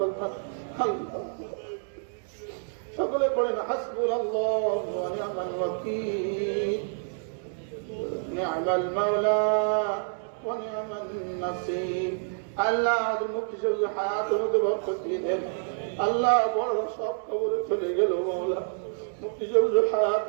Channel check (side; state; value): left; silent; digital silence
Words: আল্লাহ সকলে পড়েন হাসবুনাল্লাহু ওয়া নি'মাল ওয়াকিল, নি'মাল মাওলা ওয়া নি'মান নাসির। আল্লাহ আমাদের মুক্তি সবুজ হায়াতের মধ্যে বরকত দিয়ে দেন। আল্লাহ বড় সব কবরে চলে গেল মওলা, মুক্তি সবুজ